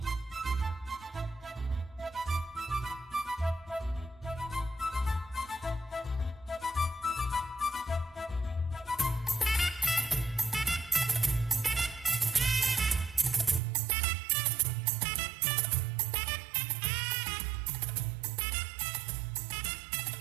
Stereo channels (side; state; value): left; drops out; at 13.6 s